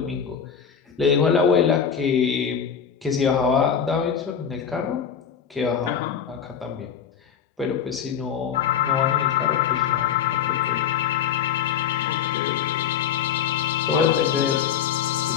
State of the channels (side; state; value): right; quieter; 7.9 dB